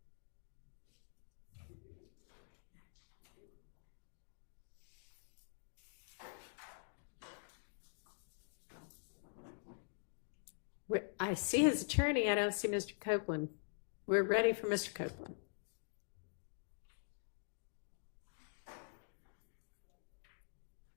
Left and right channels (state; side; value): silent; right; digital silence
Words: I see his attorney. I don't see Mr. Copeland. We're ready for Mr. Copeland.